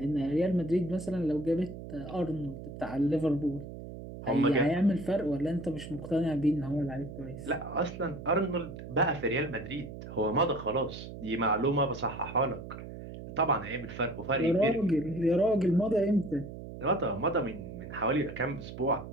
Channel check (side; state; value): right; noise; hum, 11 dB below the sound